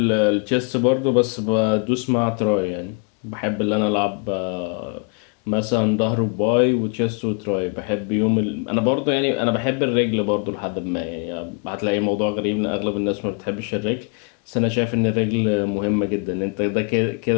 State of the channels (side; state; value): right; quieter; 35.4 dB